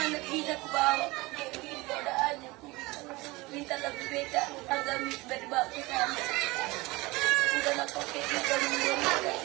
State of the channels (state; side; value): quieter; left; 22.4 dB